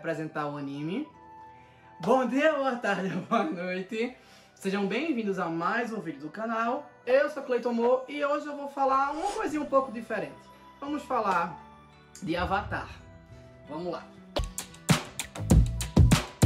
o anime? Bom dia, boa tarde, boa noite. Sejam bem-vindos a mais um vídeo do canal. Eu sou Cleiton Mo e hoje eu vou falar uma coisinha um pouco diferente. Vamos falar de Avatar. Vamos lá.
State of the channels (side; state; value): both; identical; correlation 1.00